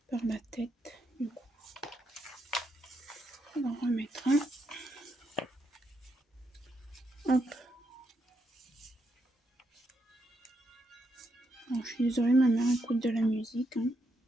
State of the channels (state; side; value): normal; both; correlation 0.80